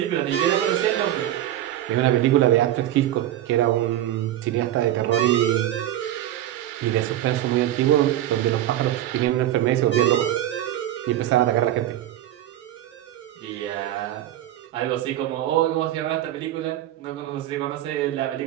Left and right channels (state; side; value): quieter; left; 12.9 dB